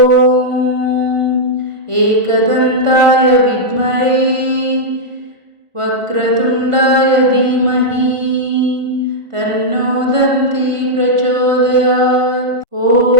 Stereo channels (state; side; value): late; left; 1.5 ms